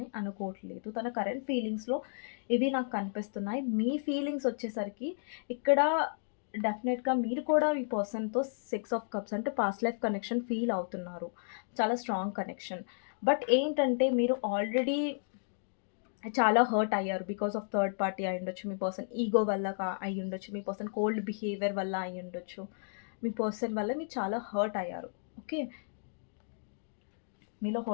అనుకోవట్లేదు. తన కరెంట్ ఫీలింగ్స్‌లో ఇవి నాకు కనిపిస్తున్నాయి. మీ ఫీలింగ్స్ వచ్చేసరికి ఇక్కడ డెఫినెట్‌గా మీరు కూడా ఈ పర్సన్‌తో 6 ఆఫ్ కప్స్ అంటే పాస్ట్ లైఫ్ కనెక్షన్ ఫీల్ అవుతున్నారు. చాలా స్ట్రాంగ్ కనెక్షన్. బట్ ఏంటంటే మీరు ఆల్రెడీ చాలా హర్ట్ అయ్యారు. బికాస్ ఆఫ్ థర్డ్ పార్టీ అయ్యుండొచ్చు. మీ పర్సన్ ఈగో వల్ల అయ్యుండొచ్చు. మీ పర్సన్ కోల్డ్ బిహేవియర్ వల్ల అయ్యుండొచ్చు. మీ పర్సన్ వల్ల మీరు చాలా హర్ట్ అయ్యారు. ఓకే. మీలో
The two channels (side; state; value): right; silent; digital silence